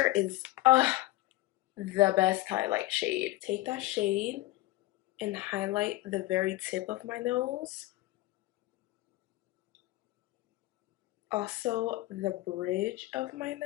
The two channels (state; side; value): quieter; right; 17.9 dB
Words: is the best highlight shade. Take that shade and highlight the very tip of my nose. Also the bridge of my